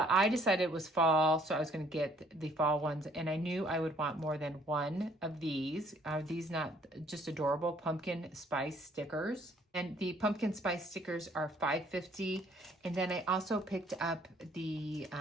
I decided it was fall, so I was going to get the fall ones, and I knew I would want more than one of these. Are these not just adorable pumpkin spice stickers? And the pumpkin spice stickers are $5.50. And then I also picked up the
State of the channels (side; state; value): both; normal; correlation 0.62